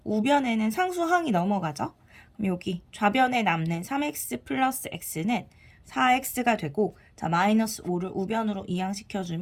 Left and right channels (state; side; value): identical; both; correlation 1.00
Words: 우변에는 상수항이 넘어가죠. 그럼 여기 좌변에 남는 3x 플러스 x는 4x가 되고, 마이너스 5를 우변으로